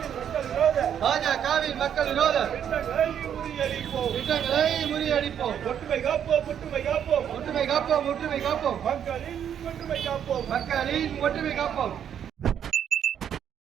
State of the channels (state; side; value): quieter; left; 9.0 dB